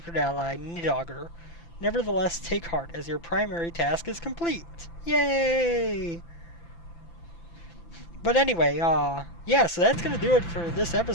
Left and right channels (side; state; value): right; late; 5.9 ms